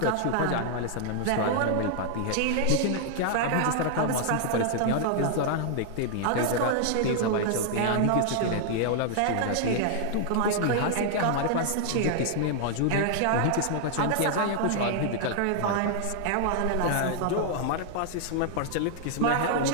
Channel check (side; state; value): both; different; correlation 0.00